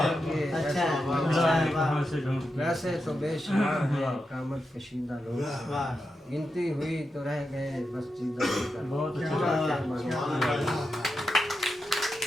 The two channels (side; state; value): both; normal; correlation 0.88